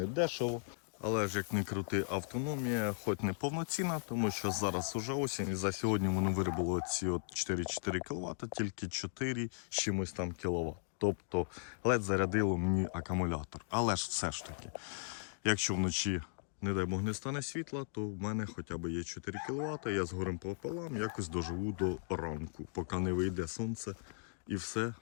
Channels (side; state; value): right; silent; digital silence